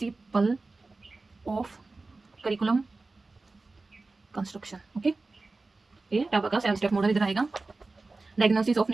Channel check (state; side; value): quieter; left; 3.5 dB